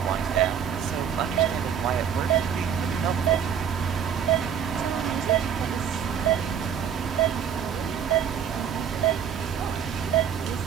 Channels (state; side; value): quieter; left; 8.1 dB